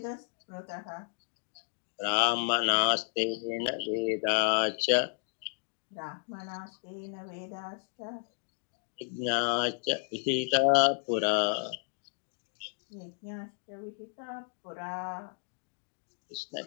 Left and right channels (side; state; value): right; silent; digital silence